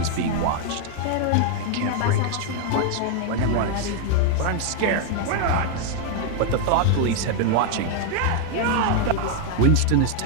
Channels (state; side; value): different; both; correlation 0.00